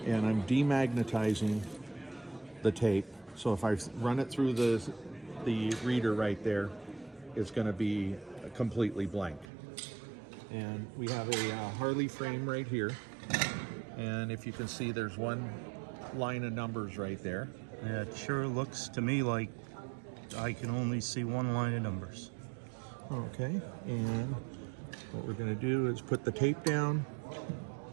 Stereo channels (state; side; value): drops out; left; at 9.5 s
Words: and I'm demagnetizing the tape. So if I run it through the reader right there, it's going to be completely blank. And we have a Harley frame right here, and if you can see, there's one line of numbers right there. Yeah, it sure looks to me like I can only see one line of numbers. Okay, and what we're going to do is put the tape down.